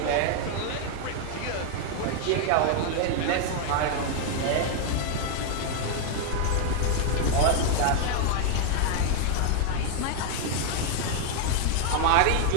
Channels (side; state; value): both; different; correlation 0.00